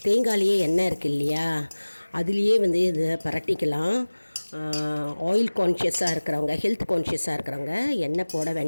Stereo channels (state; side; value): inverted; both; correlation -1.00